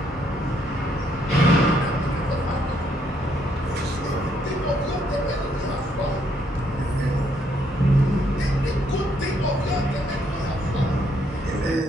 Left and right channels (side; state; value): both; normal; correlation 0.72